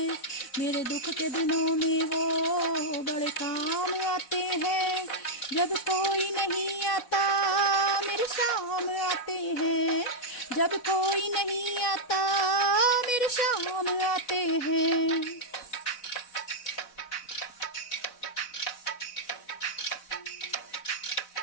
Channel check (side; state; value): right; late; 4.0 ms